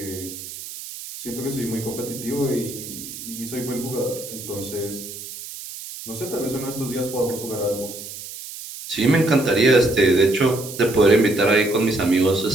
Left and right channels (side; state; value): right; noise; hiss, 11 dB below the sound